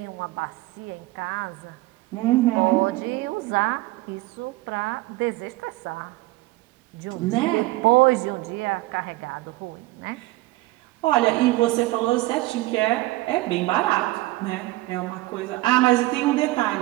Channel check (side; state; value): left; quieter; 19.6 dB